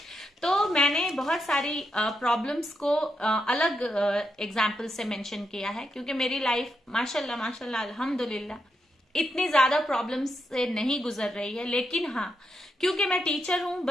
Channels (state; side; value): normal; both; correlation 0.83